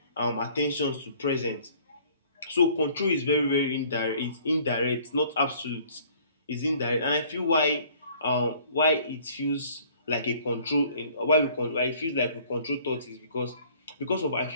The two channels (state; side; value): inverted; both; correlation -0.55